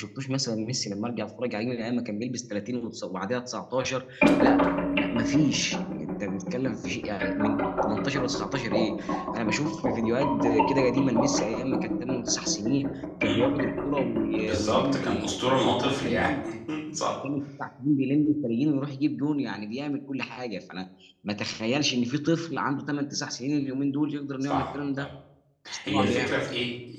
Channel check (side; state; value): both; identical; correlation 1.00